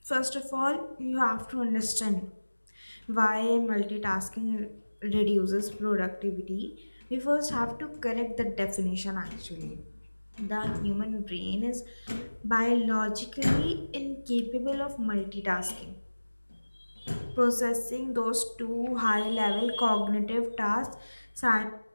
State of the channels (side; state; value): both; inverted; correlation -1.00